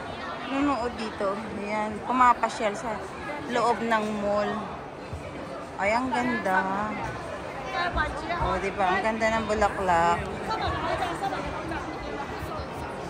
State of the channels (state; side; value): identical; both; correlation 1.00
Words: nunood dito. Ayan, pumapasyal sa loob ng mall. Ay, ang ganda. O, diba? Ang ganda ng bulaklak.